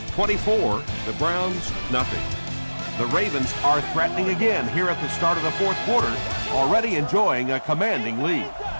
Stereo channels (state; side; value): inverted; both; correlation -1.00